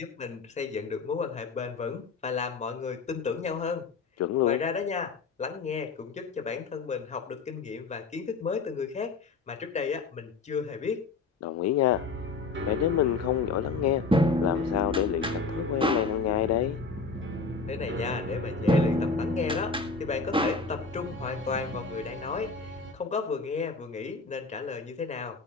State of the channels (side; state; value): right; quieter; 4.4 dB